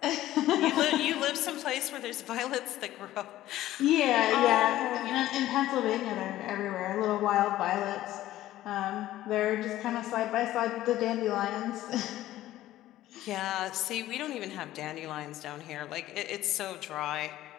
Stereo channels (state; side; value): quieter; right; 14.5 dB